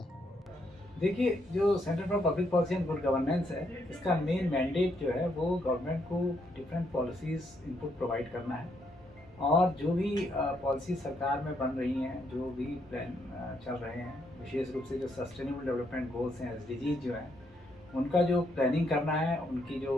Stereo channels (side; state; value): both; normal; correlation 0.75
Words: देखिए, जो centre for public policy and good governance है, इसका मेन मैंडेट जो है वो गवर्नमेंट को डिफरेंट पॉलिसीज़ इनपुट प्रोवाइड करना है। और जो भी पॉलिसी सरकार में बन रही हैं, जो भी प्लान चल रहे हैं, विशेष रूप से जो सस्टेनेबल डेवलपमेंट गोल्स हैं, एसडीजीज जो हैं, उनका जो प्लानिंग करना है, उनकी